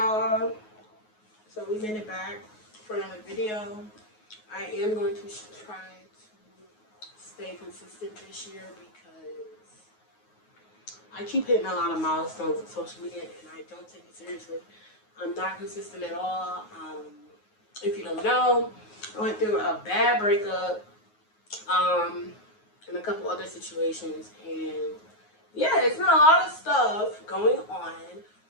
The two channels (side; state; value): right; late; 9.4 ms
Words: y'all. So we made it back for another video. I am going to try to stay consistent this year because I keep hitting a lot of milestones on social media and I don't take it seriously. I'm not consistent at all. If you don't know, I went through a bad breakup and a couple other situations, and yeah, it's been a lot of stuff going on,